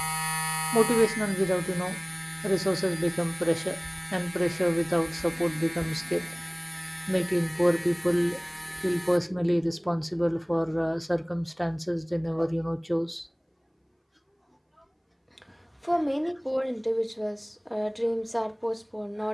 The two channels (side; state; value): both; identical; correlation 1.00